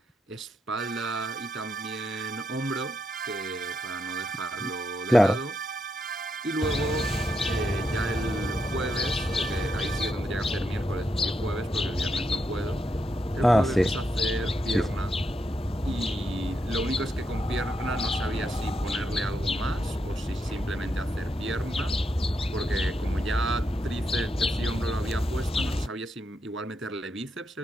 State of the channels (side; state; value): both; normal; correlation 0.82